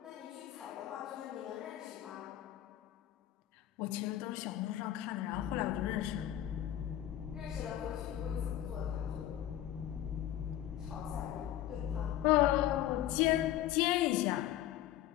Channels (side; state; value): right; quieter; 12.6 dB